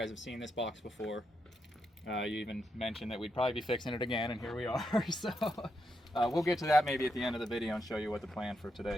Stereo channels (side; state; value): both; normal; correlation 0.82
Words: have seen this box before. You even mentioned that we'd probably be fixing it again, and here we are. So we'll get to that maybe at the end of the video and show you what the plan for